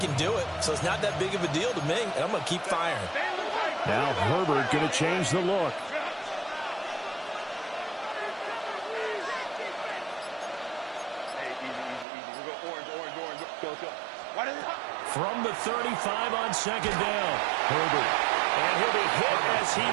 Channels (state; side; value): drops out; left; at 12.1 s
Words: do it, so it's not that big of a deal to me, and I'm going to keep firing. Now Herbert going to change the look. From the 35 on 2nd down, Herbert. And he'll be hit as he